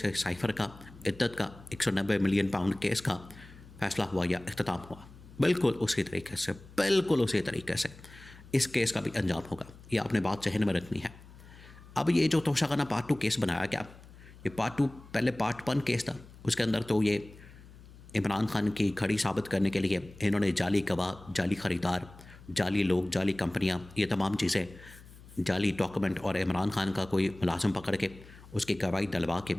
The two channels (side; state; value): left; noise; hum, 20 dB below the sound